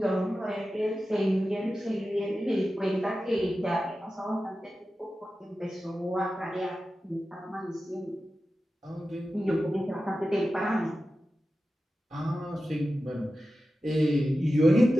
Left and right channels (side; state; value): both; normal; correlation 0.93